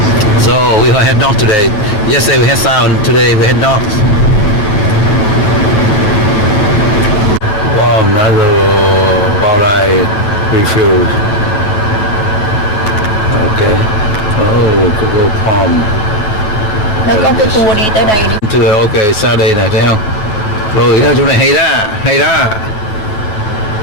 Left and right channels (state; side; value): late; right; 9.4 ms